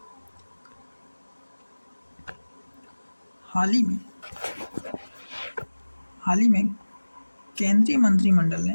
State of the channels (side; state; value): both; inverted; correlation -1.00